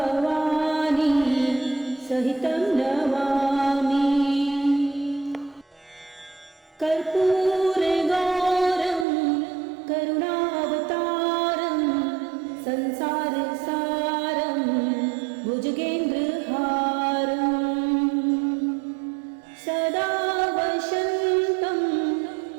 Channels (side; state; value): left; drops out; at 9.1 s